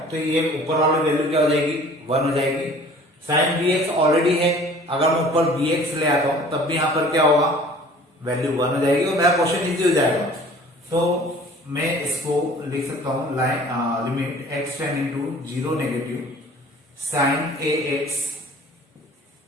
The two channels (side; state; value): both; normal; correlation 0.48